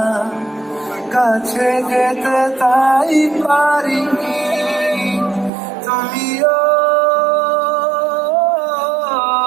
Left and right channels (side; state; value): left; drops out; at 5.5 s